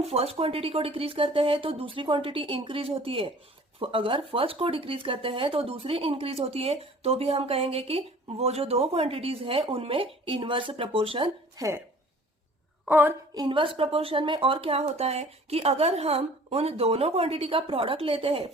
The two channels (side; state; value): both; normal; correlation 0.49